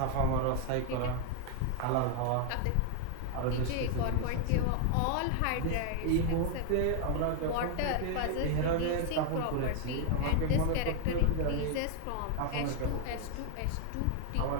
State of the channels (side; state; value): both; different; correlation 0.01